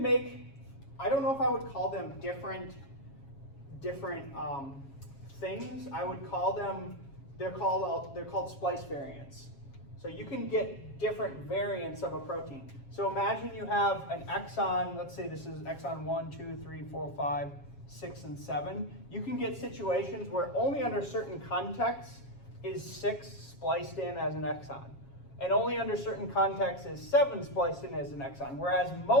make, I don't know if I would call them different things. I would call them, they're called splice variants. So you can get different variants of a protein. So imagine you have an exon, let's say this is exon 1, 2, 3, 4, 5, 6, and 7. You can get situations where only under certain contexts is 6 spliced in as an exon. And only under certain contexts is 7 spliced in as an exon. Whereas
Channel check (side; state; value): right; late; 7.3 ms